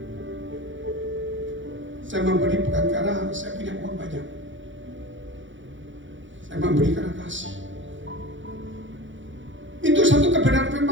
Saya memberi bukan karena saya punya uang banyak. Saya memberi karena kasih. Itu satu kebenaran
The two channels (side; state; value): left; late; 0.55 ms